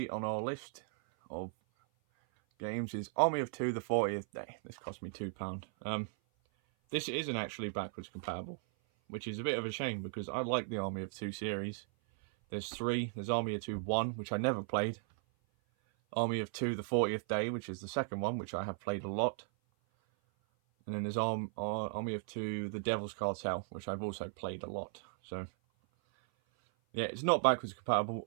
on our list of games is Army of Two: The 40th Day. This cost me £2. This isn't actually backwards compatible, which is a bit of a shame because I like the Army of Two series. There's 3. There's Army of Two 1, which I never played. Army of Two: The 40th Day, which is the second one, which I have played a lot. And then there's Army of Two: The Devil's Cartel, which I've also played a lot. So yeah, it's not backwards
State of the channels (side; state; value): left; silent; 53 dB below the other